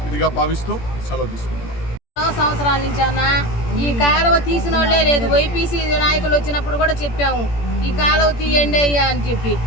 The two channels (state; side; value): late; right; 17 ms